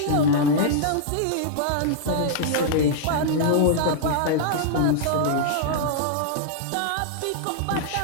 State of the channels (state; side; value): different; both; correlation -0.02